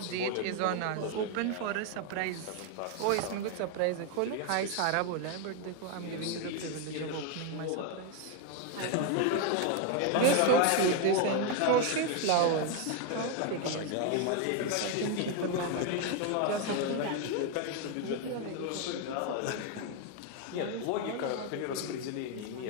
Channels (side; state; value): both; different; correlation 0.01